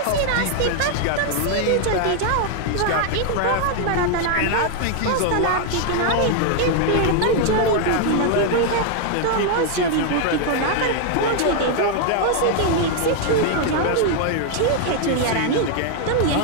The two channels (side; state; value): both; different; correlation 0.00